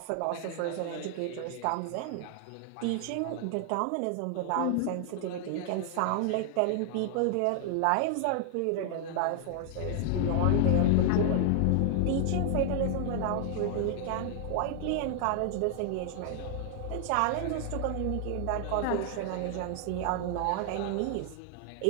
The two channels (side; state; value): both; different; correlation 0.00